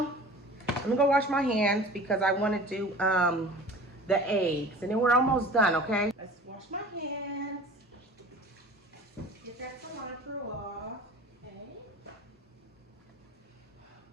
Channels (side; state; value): both; normal; correlation 0.41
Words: I'm gonna go wash my hands because I want to do the eggs, and then we're almost done. Okay, let's wash my hands. Get that cilantro off. Okay.